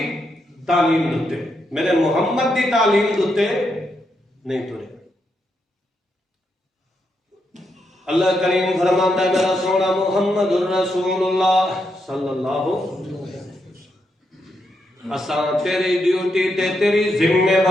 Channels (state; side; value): normal; both; correlation 0.81